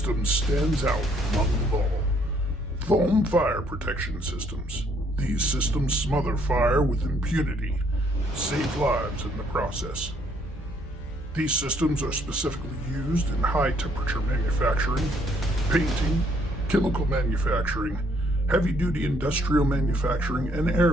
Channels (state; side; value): normal; both; correlation 0.67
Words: stands out among them all. Foam fire protection systems. These systems smother fire with impunity, save lives in the process. These systems are specifically used in high-temperature manufacturing, painting, chemical manufacturing, heavy-duty industrial manufacturing, and